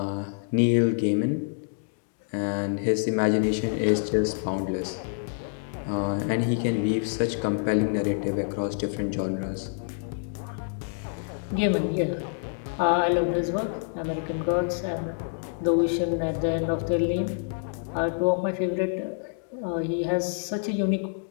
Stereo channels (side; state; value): right; silent; digital silence